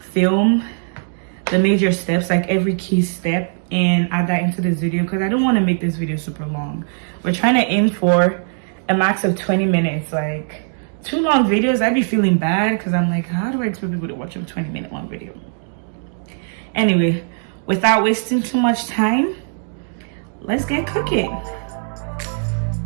the major steps, like every key step, and add that into this video because I don't want to make this video super long. We're trying to aim for a max of 20 minutes. Like, too long videos, I'd be feeling bad because I'm like, how do I expect people to watch a 20-minute long video? Anyway, without wasting too much time, let's get cooking.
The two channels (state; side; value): silent; left; digital silence